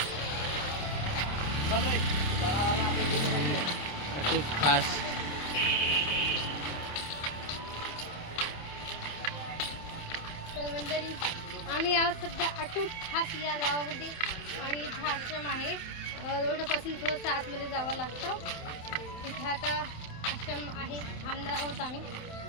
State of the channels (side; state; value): right; late; 27 ms